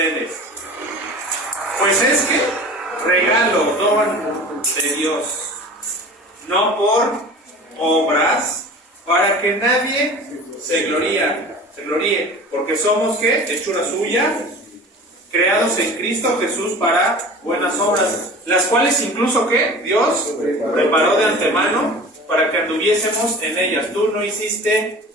Pues es que regalo, don de Dios, no por obras, para que nadie se gloríe, porque somos ¿qué? Hechura suya, creados en Cristo Jesús para buenas obras, las cuales incluso ¿qué? Dios preparó de antemano para que anduviésemos en ellas. Tú no hiciste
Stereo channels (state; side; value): normal; both; correlation 0.39